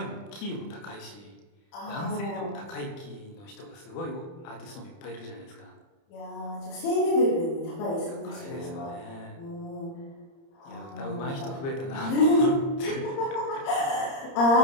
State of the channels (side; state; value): right; late; 30 ms